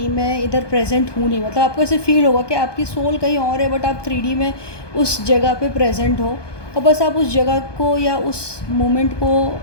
मैं इधर प्रेजेंट हूँ नहीं। मतलब आपको ऐसे फील होगा कि आपकी सोल कहीं और है, बट आप 3D में उस जगह पे प्रेजेंट हो, और बस आप उस जगह को या उस मोमेंट को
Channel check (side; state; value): right; late; 1.2 ms